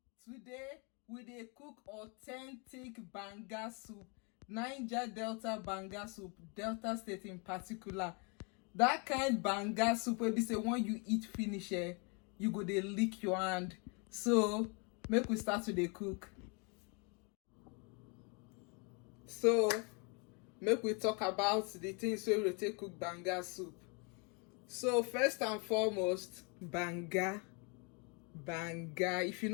Today we dey cook authentic banga soup, Niger Delta banga soup, Delta State in particular. That kind banga soup wey be say when you eat finish, you go dey lick your hand. So make we start to dey cook. So make we talk about the things wey we take cook banga soup. So first and foremost, banga. If you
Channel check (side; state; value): right; quieter; 33.8 dB